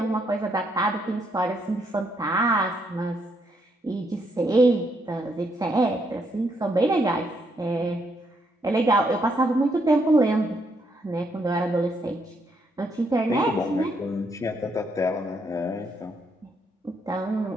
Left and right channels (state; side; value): normal; both; correlation 0.75